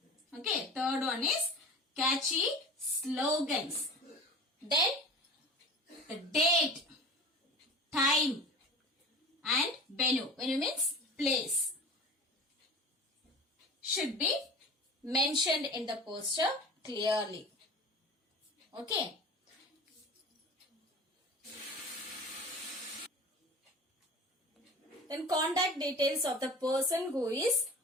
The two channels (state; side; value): normal; both; correlation 0.37